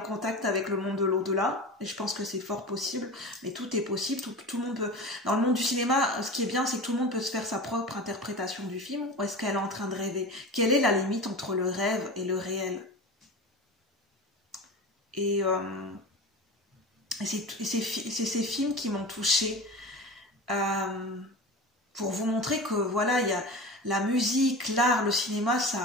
avec le monde de l'au-delà? Et je pense que c'est fort possible, mais tout est possible, tout le monde peut... Dans le monde du cinéma, ce qui est bien, c'est que tout le monde peut se faire sa propre interprétation du film, ou est-ce qu'elle est en train de rêver? Quelle est la limite entre le rêve et le réel? Et c'est ces films qui m'ont touchée, pour vous montrer que voilà, il y a la musique, l'art, le cinéma,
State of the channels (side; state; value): both; normal; correlation 0.30